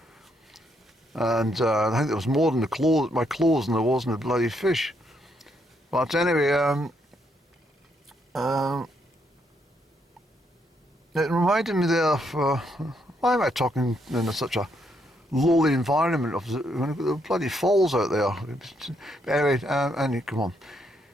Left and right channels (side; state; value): both; normal; correlation 0.75